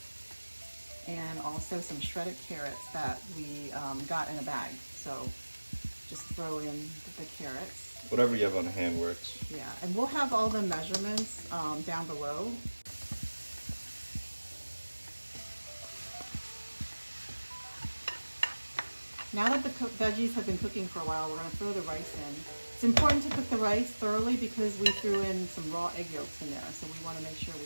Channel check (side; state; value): both; inverted; correlation -1.00